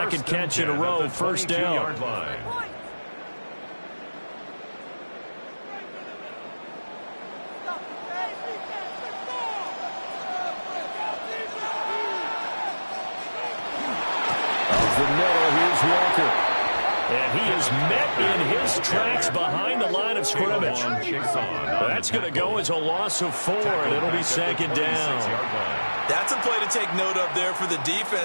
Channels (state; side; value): inverted; both; correlation -1.00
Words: catch in a row, first down. Of the middle, here's Walker. And he is met in his tracks behind the line of scrimmage. That's going to go as a loss of 4, and it'll be 2nd down. That's a play to take note of there for the